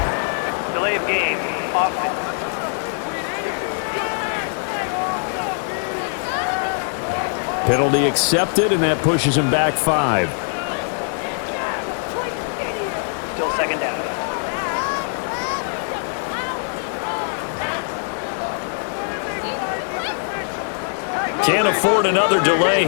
Delay of game. Offense. Penalty accepted, and that pushes him back 5. Still 2nd down. Can't afford another delay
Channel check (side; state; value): right; silent; digital silence